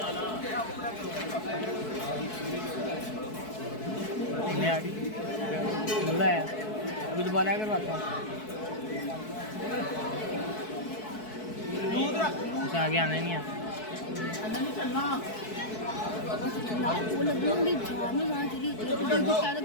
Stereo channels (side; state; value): right; late; 4.6 ms